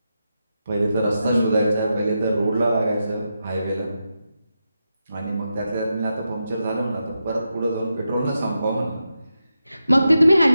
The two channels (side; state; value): both; inverted; correlation -0.88